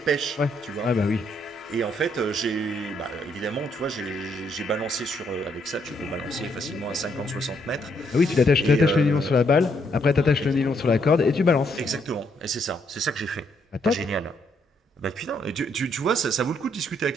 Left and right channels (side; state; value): both; normal; correlation 0.73